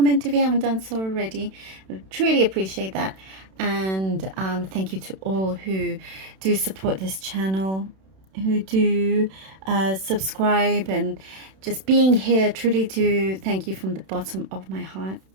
if you haven't done so already. I truly appreciate that, and thank you to all who do support this channel, who do subscribe, and just being here. Truly do thank you from the bottom of my heart.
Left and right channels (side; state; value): left; late; 31 ms